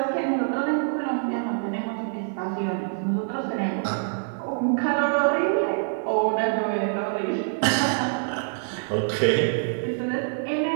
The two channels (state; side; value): silent; left; 61 dB below the other